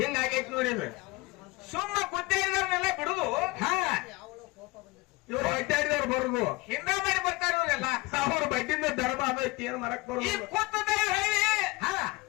ನೋಡಿದ್ರೆ ಸುಮ್ಮ ಗುದ್ದೆ ಇದ್ರನ್ನೆಲ್ಲ ಬಿಡುದು. ಇವ್ರು ಅಡ್ಡಾಡಿದವ್ರು ಬರುದು ಹಿಂದ ಮಾಡಿ ಬರ್ತಾರ ಇವರೆಲ್ಲ. ಅವ್ರ ಬಡ್ಡಿಂದ ಧರ್ಮ ಅದೈತಿ ಏನ್ ಮರಕ್ ಈ ಬರುದು. ಕೂತದ ಹೇಳಿ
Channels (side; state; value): right; quieter; 23.4 dB